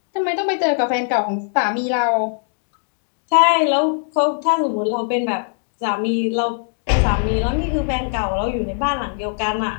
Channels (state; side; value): silent; right; 58 dB below the other